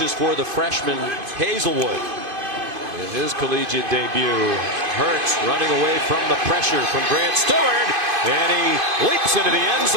for the freshman Hazelwood in his collegiate debut. Hurts running away from the pressure from Grant Stewart, and he leaps into the end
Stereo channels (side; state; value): left; late; 2.5 ms